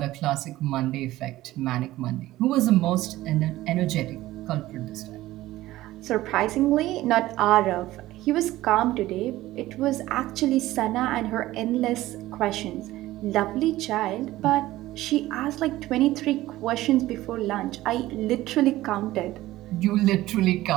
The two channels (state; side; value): quieter; left; 16.3 dB